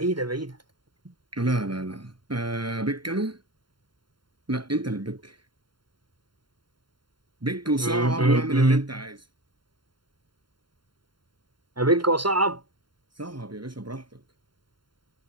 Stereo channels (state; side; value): late; left; 0.72 ms